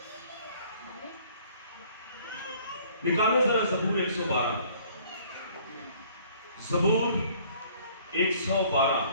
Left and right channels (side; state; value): both; inverted; correlation -0.56